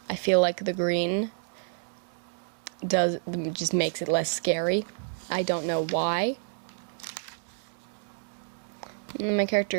I feel like the green just makes it less scary. I don't know why. And then my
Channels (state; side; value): silent; left; digital silence